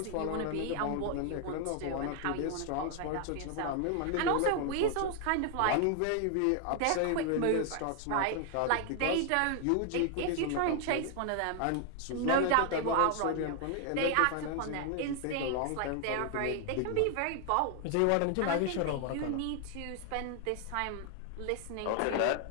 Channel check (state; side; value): different; both; correlation 0.00